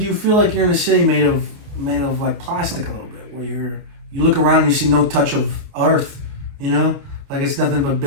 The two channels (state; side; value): late; left; 29 ms